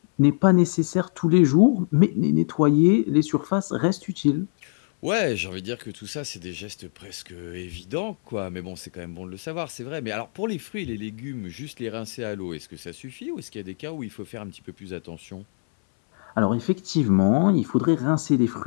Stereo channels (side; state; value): right; silent; 62 dB below the other